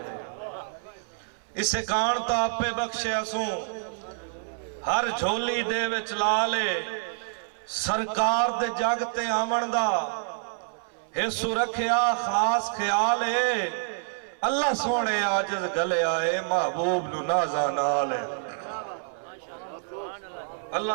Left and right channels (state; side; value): silent; left; 58 dB below the other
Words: اس سے کان تاپ پہ بخشیا سوں ہر جھولی دے وچ لالے سرکار دے جاگتے آمن دا حصو رکھیا خاص خیال ہے اللہ سونے آجز گلے آئے محبوب نو نازا نالے